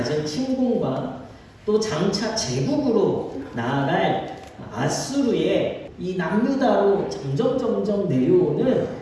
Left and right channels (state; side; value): identical; both; correlation 1.00